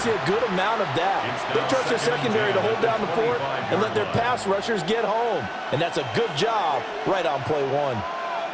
a good amount of that. They trust their secondary to hold down the fort and let their pass rushers get home. And that's a good job right on play one.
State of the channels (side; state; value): both; identical; correlation 1.00